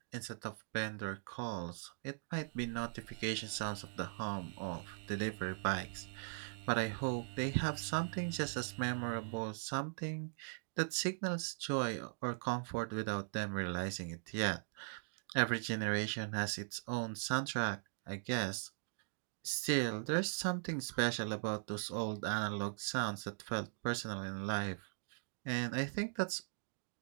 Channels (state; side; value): silent; left; digital silence